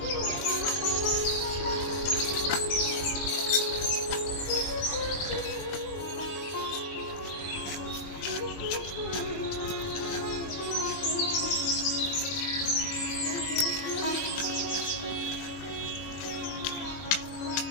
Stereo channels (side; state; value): right; late; 21 ms